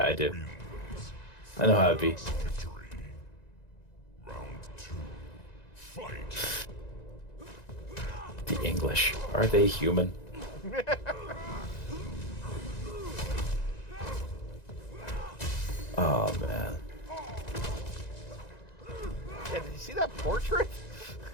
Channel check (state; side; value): late; right; 1.9 ms